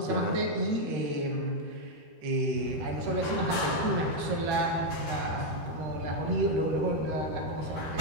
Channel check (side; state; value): left; late; 13 ms